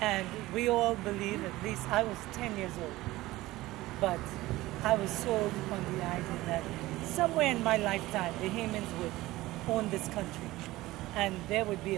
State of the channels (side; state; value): left; quieter; 18.1 dB